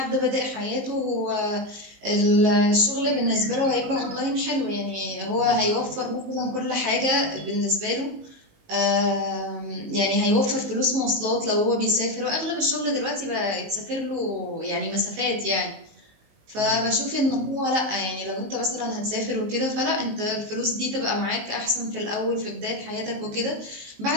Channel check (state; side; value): late; left; 19 ms